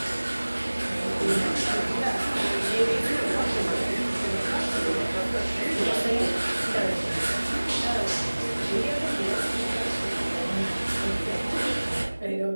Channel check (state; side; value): inverted; both; correlation -1.00